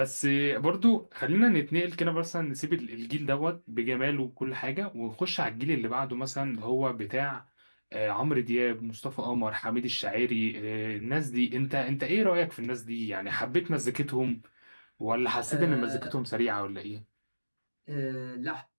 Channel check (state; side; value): inverted; both; correlation -1.00